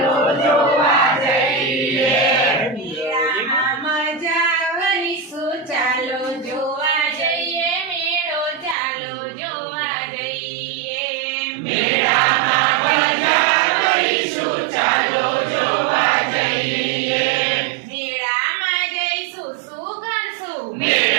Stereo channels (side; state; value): left; drops out; at 8.8 s